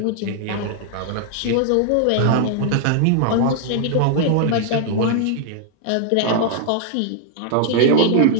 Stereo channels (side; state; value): both; different; correlation -0.01